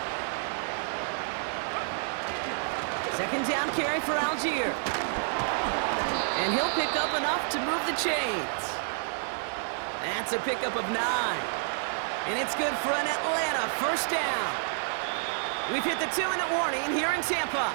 Second down carry for Algier. And he'll pick up enough to move the chains. That's a pickup of 9. And it's good for an Atlanta first down. We've hit the 2-minute warning here in Tampa.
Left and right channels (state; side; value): silent; left; 58 dB below the other